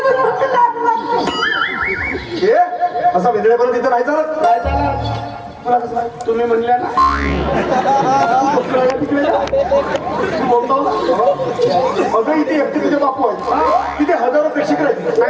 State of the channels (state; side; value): identical; both; correlation 1.00